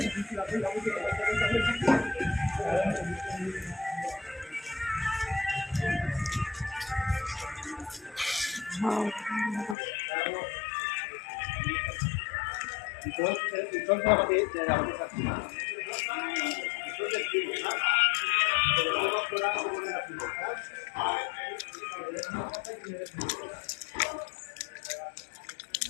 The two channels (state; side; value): drops out; right; at 9.8 s